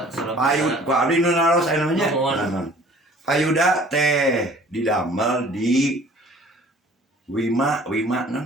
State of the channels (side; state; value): both; normal; correlation 0.51